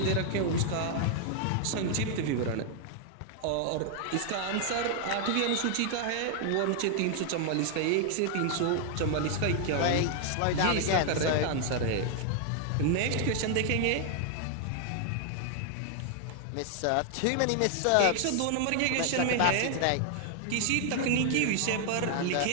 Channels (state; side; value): different; both; correlation 0.00